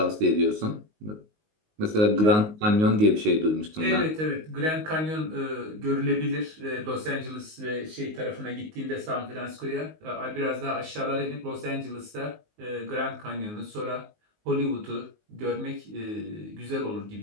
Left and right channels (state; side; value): late; left; 19 ms